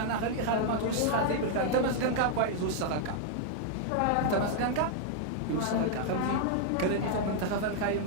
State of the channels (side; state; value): both; different; correlation 0.00